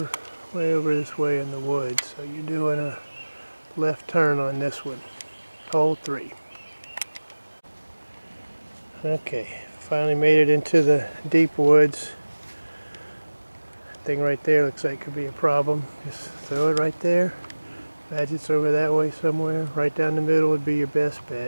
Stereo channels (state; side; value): inverted; both; correlation -1.00